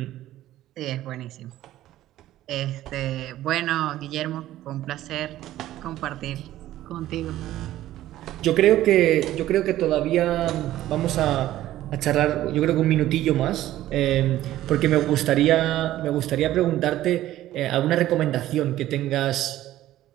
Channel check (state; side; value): quieter; left; 14.1 dB